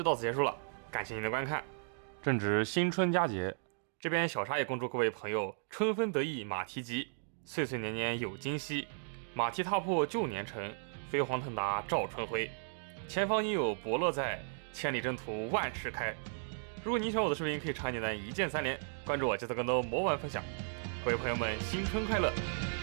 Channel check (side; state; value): left; silent; digital silence